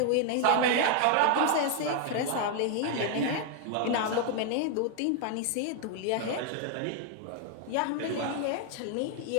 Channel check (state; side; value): different; both; correlation 0.00